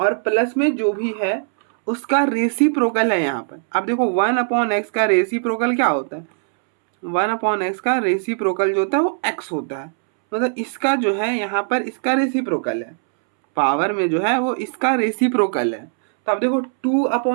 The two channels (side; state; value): left; silent; 66 dB below the other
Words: प्लस में जो भी है उसका रेसिप्रोकल है यहाँ पर। अब देखो 1 अपॉन एक्स का रेसिप्रोकल क्या होता है, 1 अपॉन एक्स का रेसिप्रोकल जो होता है वो x होता है। मतलब इसका जो है यहाँ पर इसका रेसिप्रोकल है, पावर में जो है वो इसका रेसिप्रोकल है। तो अब देखो 2